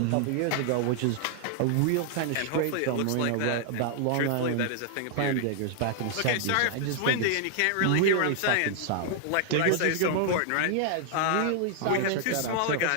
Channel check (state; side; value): different; both; correlation 0.00